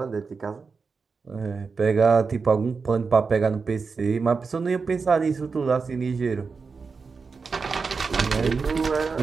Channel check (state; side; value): quieter; left; 4.9 dB